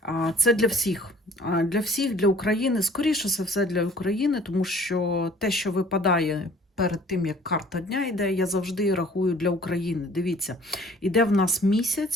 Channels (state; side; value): normal; both; correlation 0.53